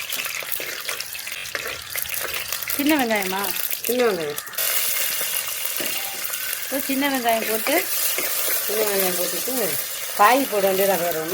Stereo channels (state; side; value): identical; both; correlation 1.00